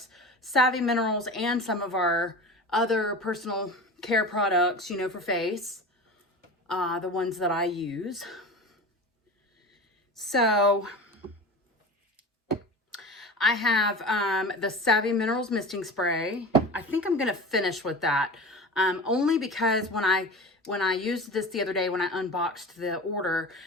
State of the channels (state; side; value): normal; both; correlation 0.32